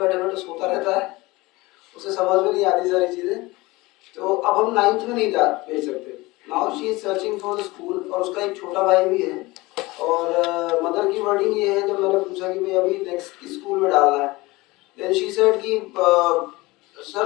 बैठे सोता रहता है, उसे समझ में नहीं आती सारी चीज़ें, तो अब हम 9th में नहीं जा भेज सकते. Now she is searching for the school, और उसका एक छोटा भाई भी है. और मदर की वर्डिंग ये है, जब मैंने पूछा कि भाई अभी नेक्स्ट किस स्कूल में डालना है, देन शी सेड कि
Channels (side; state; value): right; quieter; 21.5 dB